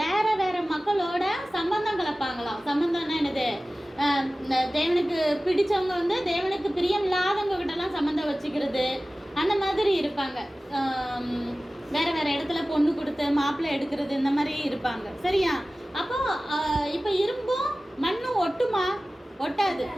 வேற வேற மக்களோட சம்பந்தம் கலப்பாங்களாம். சம்பந்தம்னா என்னது, தேவனுக்கு பிடிச்சவங்க வந்து தேவனுக்கு பிரியம் இல்லாதவங்க கிட்டலாம் சம்பந்தம் வச்சுக்கிறது, அந்த மாதிரி இருப்பாங்க. வேற வேற இடத்துல பொண்ணு கொடுத்து மாப்பிள்ளை எடுக்கிறது, இந்த மாதிரி இருப்பாங்க. சரியா? அப்போ இப்போ இரும்பும் மண்ணும் ஒட்டுமா? ஒட்டாது.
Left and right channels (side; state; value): both; normal; correlation 0.97